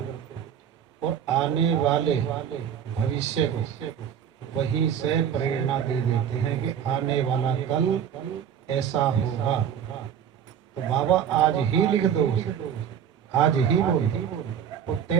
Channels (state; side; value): quieter; left; 8.8 dB